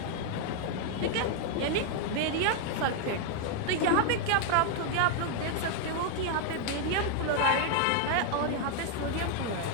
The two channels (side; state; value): both; different; correlation 0.00